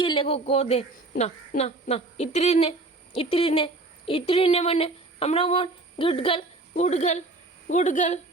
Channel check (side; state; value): left; quieter; 3.1 dB